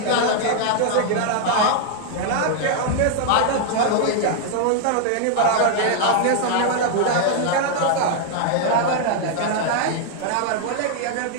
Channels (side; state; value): both; different; correlation 0.00